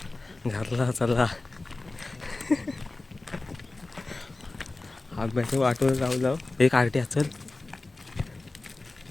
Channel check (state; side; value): quieter; right; 3.2 dB